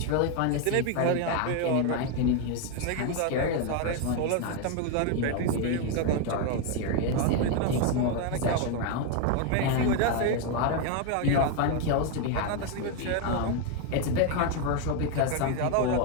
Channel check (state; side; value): different; both; correlation 0.01